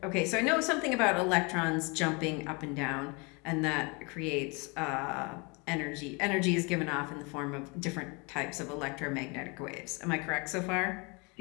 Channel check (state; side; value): quieter; right; 30.1 dB